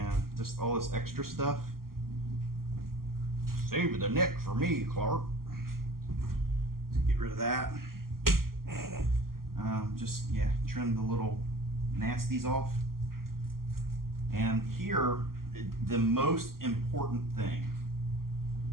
just all this extra stuff. Save the neck for me, Clark. Let's get rid of that. Just, yeah, trim the little nasties off. And here, the most important thing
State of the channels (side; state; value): left; late; 0.92 ms